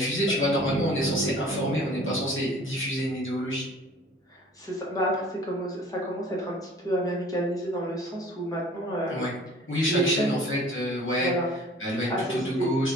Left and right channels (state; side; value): normal; both; correlation 0.49